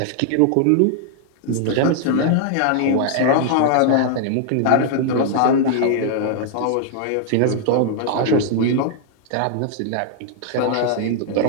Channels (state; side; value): different; both; correlation -0.01